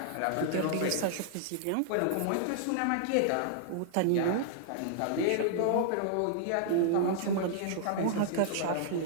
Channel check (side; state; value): both; different; correlation -0.01